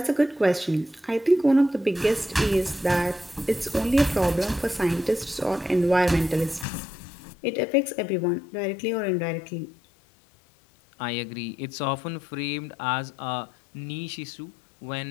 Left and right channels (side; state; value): right; drops out; at 6.7 s